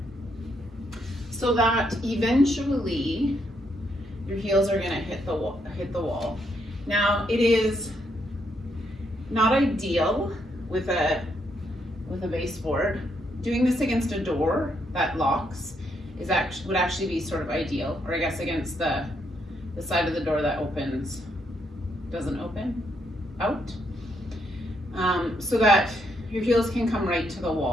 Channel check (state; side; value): normal; both; correlation 0.76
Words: so that eventually your heels are going to hit the wall. Now, it is not ideal with a baseboard. Doing this against a door that locks would actually be sort of ideal, or I guess against the side of the door that doesn't open out, so that your heels can come right to the